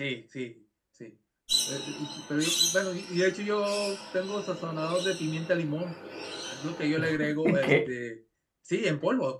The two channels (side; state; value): both; identical; correlation 1.00